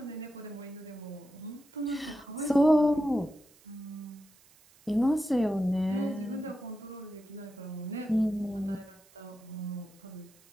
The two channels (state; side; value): noise; right; hiss, 28 dB below the sound